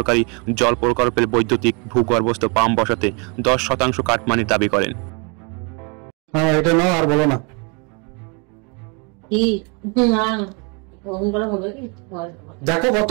জল প্রকল্পের বৈদ্যুতিক ভূগর্ভস্থ পাম্প বসাতে ১০% কাটমানির দাবি করেন। এটা নাও আর বলো না। দেখো কত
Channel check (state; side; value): quieter; left; 33.3 dB